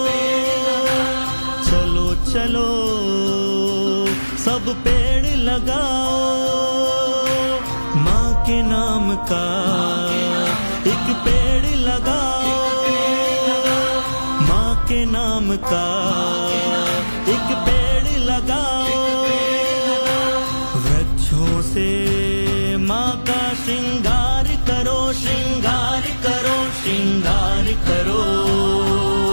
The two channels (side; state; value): both; inverted; correlation -1.00